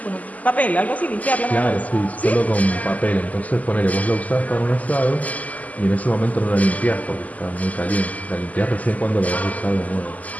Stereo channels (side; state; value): right; late; 0.076 ms